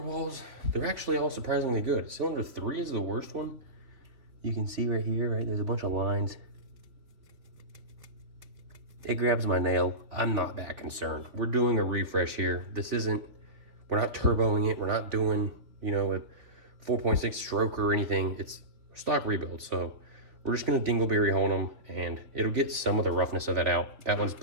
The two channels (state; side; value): late; left; 3.6 ms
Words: They're actually all surprisingly good. Cylinder 3 is the worst one. You can see right here, right? There's a bunch of lines. It grabs my nail. I'm not that concerned. We're doing a refresh here. We're not turboing it. We're not doing, you know, a 4.6 stroke or anything. It's stock rebuild. So we're just gonna dingleberry hone them and it'll get some of the roughness of that out. That one's